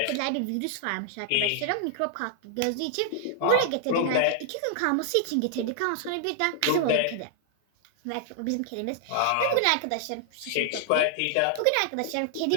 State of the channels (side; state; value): both; different; correlation 0.00